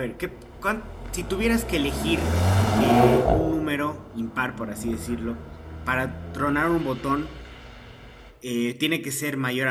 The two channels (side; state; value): both; identical; correlation 1.00